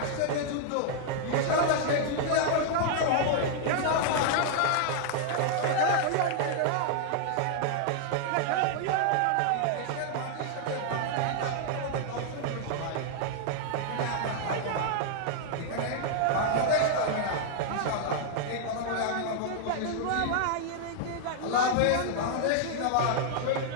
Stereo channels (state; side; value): different; both; correlation -0.01